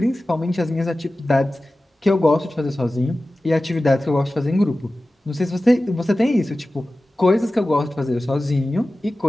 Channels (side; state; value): both; normal; correlation 0.96